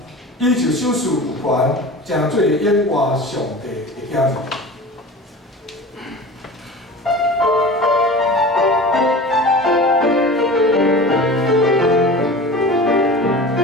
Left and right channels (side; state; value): both; normal; correlation 0.36